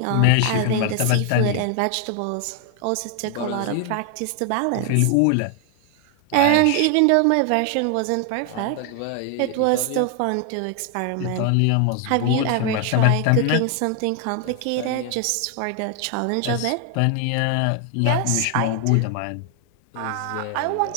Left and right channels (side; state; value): both; different; correlation 0.00